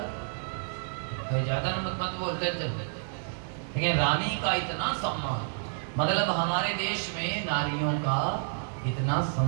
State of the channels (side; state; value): left; silent; digital silence